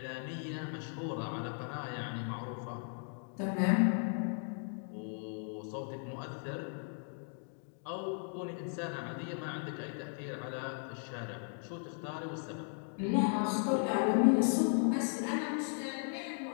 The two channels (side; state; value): right; silent; 53 dB below the other